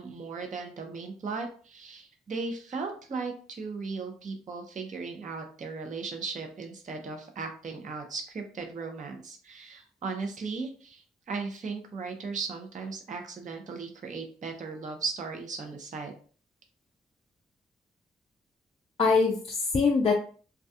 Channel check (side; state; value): both; normal; correlation 0.60